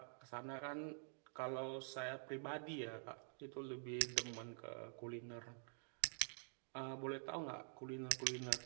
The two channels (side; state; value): left; silent; digital silence